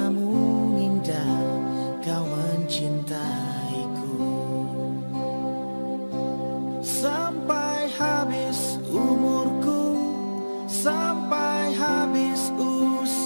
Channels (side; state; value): both; inverted; correlation -1.00